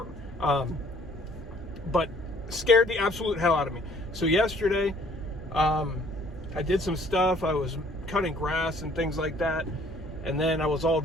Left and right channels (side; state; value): both; normal; correlation 0.58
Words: But scared the absolute hell out of me. So yesterday, I did some stuff. I was cutting grass and things like that, and then I was all